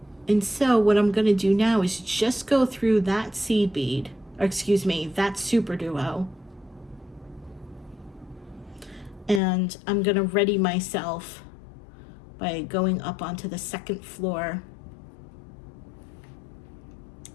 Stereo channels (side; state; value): right; drops out; at 9.4 s